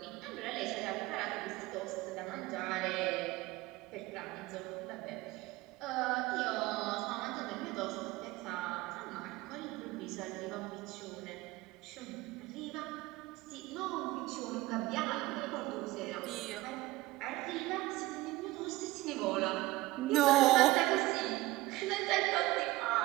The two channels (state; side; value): quieter; left; 19.2 dB